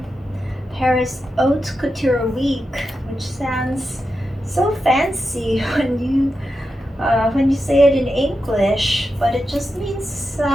Paris Haute Couture week, which sounds so fancy when you say it in English, but it just means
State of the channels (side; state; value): both; normal; correlation 0.89